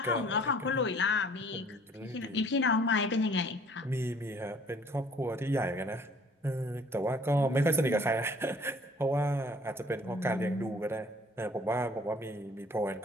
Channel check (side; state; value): both; normal; correlation 0.55